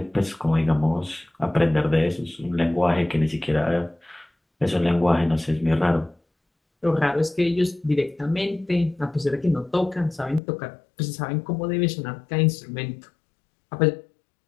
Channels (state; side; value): drops out; right; at 10.4 s